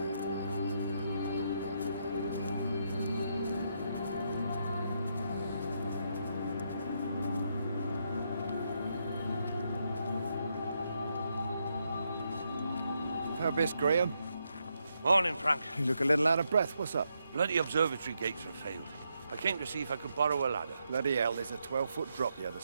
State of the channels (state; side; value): inverted; both; correlation -0.80